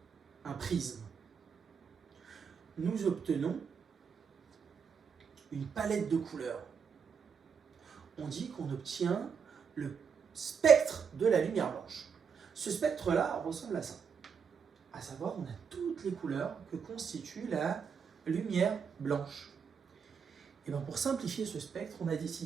un prisme. Nous obtenons une palette de couleurs. On dit qu'on obtient le spectre de la lumière blanche. Ce spectre-là ressemble à ça. À savoir, on a toutes les couleurs que constitue la lumière blanche. Et bien pour simplifier ce spectre, on a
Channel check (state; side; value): quieter; left; 6.5 dB